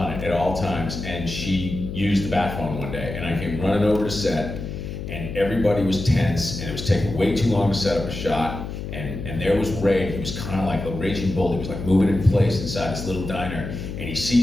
it at all times, and she used the bat phone one day, and I came running over to set, and everybody was tense, and it was taking way too long to set up a shot, and there was Ray. He was kind of like a raging bull. He was like moving in place inside this little diner, and he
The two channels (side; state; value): left; noise; hum, 7 dB below the sound